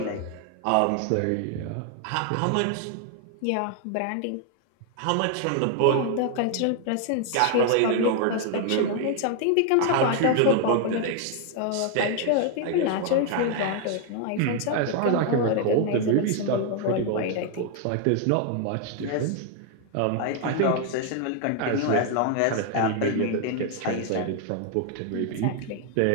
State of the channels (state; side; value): different; both; correlation 0.00